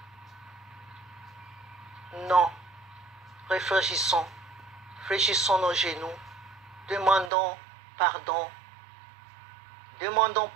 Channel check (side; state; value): left; drops out; at 7.3 s